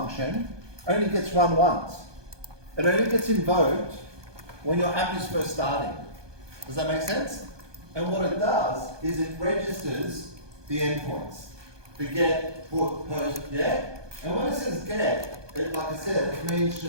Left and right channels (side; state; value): left; late; 1.2 ms